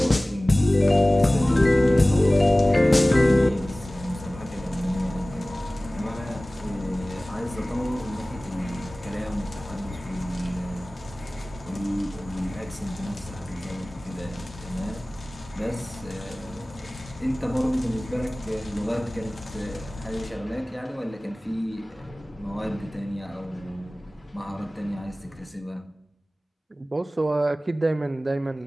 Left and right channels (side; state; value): both; normal; correlation 0.98